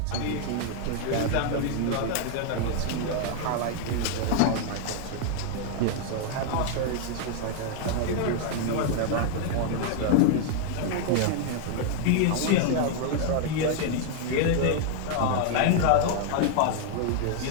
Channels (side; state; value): both; different; correlation 0.00